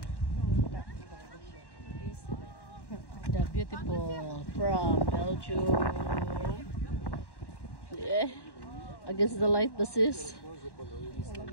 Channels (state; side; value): late; right; 1.1 ms